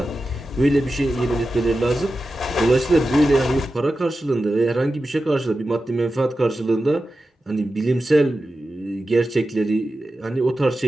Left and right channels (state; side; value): normal; both; correlation 0.92